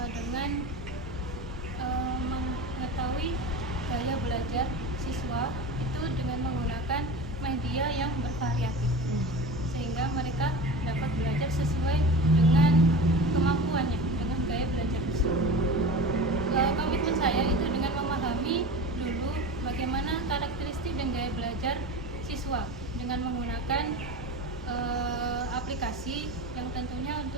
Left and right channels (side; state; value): both; normal; correlation 0.31